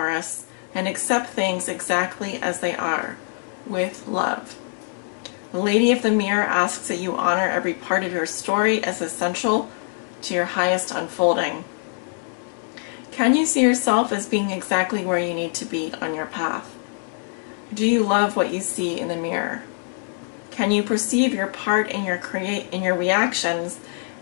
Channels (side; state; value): right; silent; 57 dB below the other